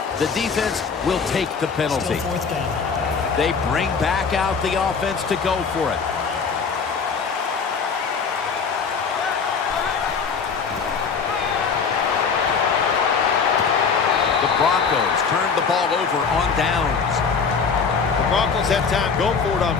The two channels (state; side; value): quieter; right; 5.6 dB